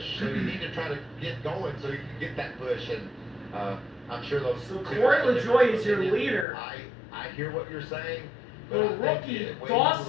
So you need to try to get going so you can get that push. And I'm sure those. So Corey LaJoie is your leader. I hear what you're saying. The rookie,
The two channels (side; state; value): right; drops out; at 6.5 s